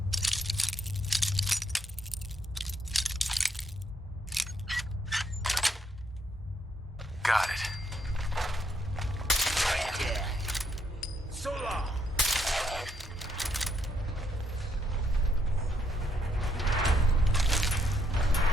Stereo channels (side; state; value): both; normal; correlation 0.74